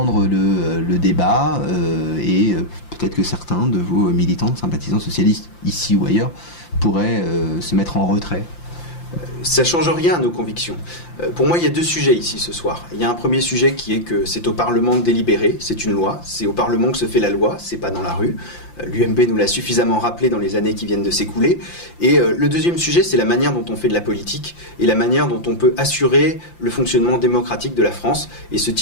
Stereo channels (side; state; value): right; late; 5.8 ms